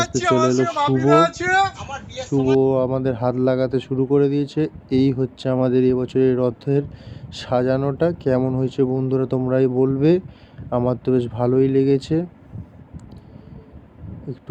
আস্তে চলে এলো শুভ আমাদের হাত লাগাতে শুরু করে দিয়েছে। এই হচ্ছে আমাদের এবছরের রথের সাজানোটা। কেমন হয়েছে বন্ধুরা তোমরাই বলবে। আমার তো বেশ ভালোই লেগেছে।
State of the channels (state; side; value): identical; both; correlation 1.00